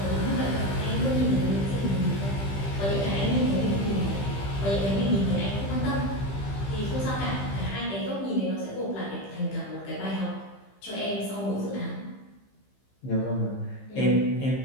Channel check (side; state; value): right; late; 15 ms